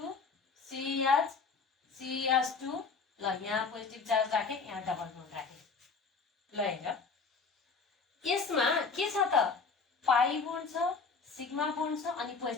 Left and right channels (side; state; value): right; quieter; 4.8 dB